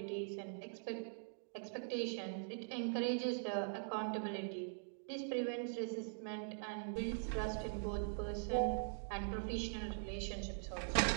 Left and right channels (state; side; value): silent; left; digital silence